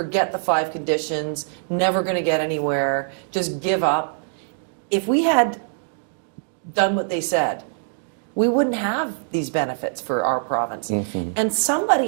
the 5 conditions, never going to get anywhere, just give up. If we had done what they said, we wouldn't have these benefits for our province. And somebody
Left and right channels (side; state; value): left; silent; digital silence